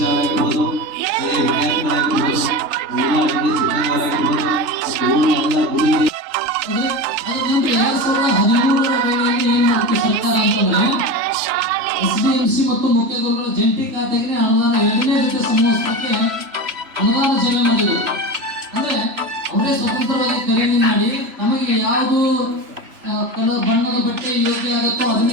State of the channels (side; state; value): left; late; 3.3 ms